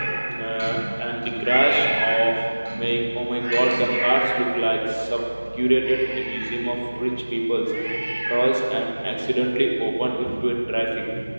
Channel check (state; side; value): inverted; both; correlation -1.00